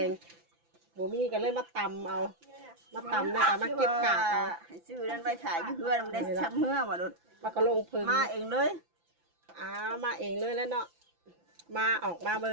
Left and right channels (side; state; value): left; late; 5.9 ms